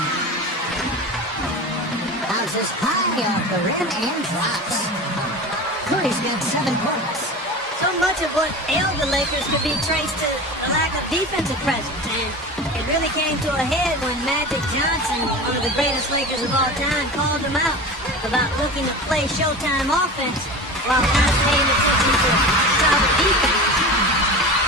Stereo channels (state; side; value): normal; both; correlation 0.31